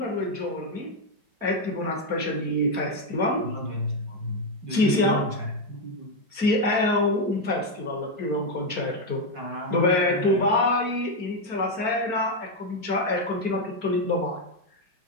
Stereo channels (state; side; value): late; left; 4.4 ms